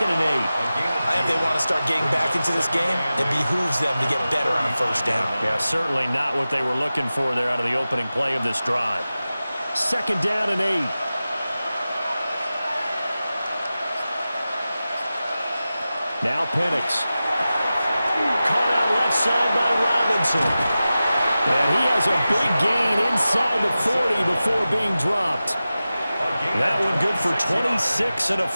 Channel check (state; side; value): inverted; both; correlation -0.95